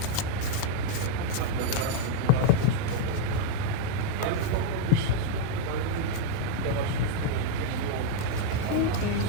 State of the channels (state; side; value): different; both; correlation 0.00